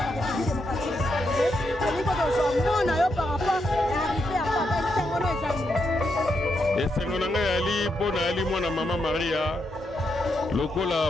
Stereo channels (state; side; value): normal; both; correlation 0.81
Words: esengo na ngai ali mpo na ali mwana mama Maria lokola